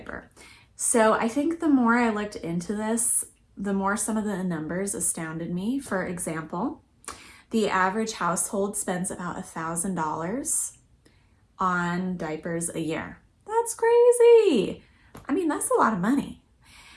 So I think the more I looked into this, the more some of the numbers astounded me. For example, the average household spends about $1,000 on diapers a year. That's crazy. I mean, that's a lot of money.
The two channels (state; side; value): identical; both; correlation 1.00